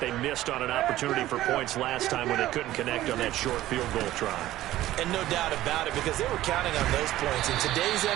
missed on an opportunity for points last time when they couldn't connect on that short field goal try. And no doubt about it, because they were counting on those points. In today's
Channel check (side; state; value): left; quieter; 14.8 dB